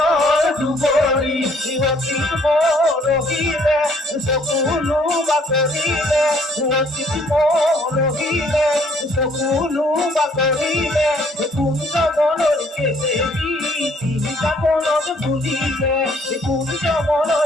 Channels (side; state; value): both; normal; correlation 0.62